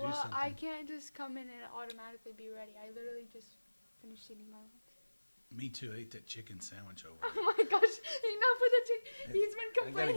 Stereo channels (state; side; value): inverted; both; correlation -1.00